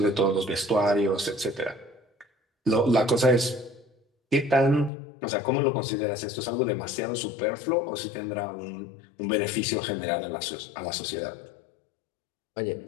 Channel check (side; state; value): right; drops out; at 4.9 s